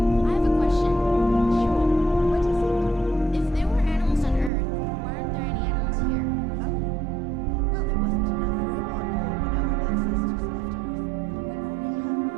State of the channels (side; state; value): left; drops out; at 4.5 s